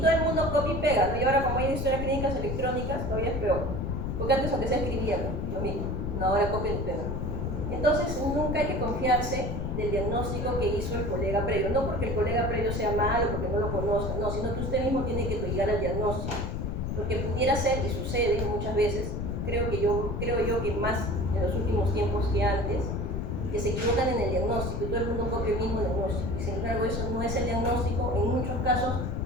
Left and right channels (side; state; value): left; noise; rumble, 2 dB below the sound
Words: el mundo copia y pega, ¿no? Y ahora como hay historias clínicas electrónicas, todavía es peor. Porque antes aunque se escribía, ¿no? Lo mismo, no, ahora copia y pega. Entonces nunca hay que confiarse del diagnóstico que hizo el colega previo, no porque el colega previo sea malo, porque no lo conozca, no, sino que usted mismo tiene que llegar al diagnóstico. Porque pudiera ser, y sucede muchas veces, creo yo que más en los últimos tiempos que antes, que se equivocan en el diagnóstico y todo el mundo copia el mismo diagnóstico. Y sin embargo eso no es el diagnóstico, en muchos casos